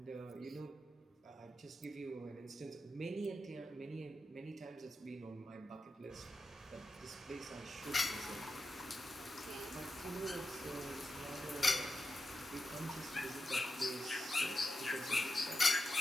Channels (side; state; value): both; normal; correlation 0.89